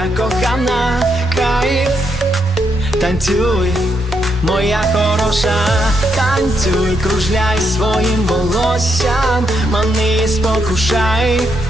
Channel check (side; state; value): both; normal; correlation 0.79